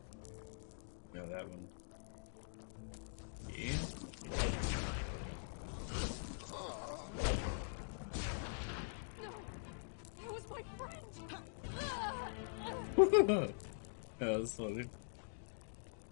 No, that one. Yeah. That was my friend! That was funny.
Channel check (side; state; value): right; silent; digital silence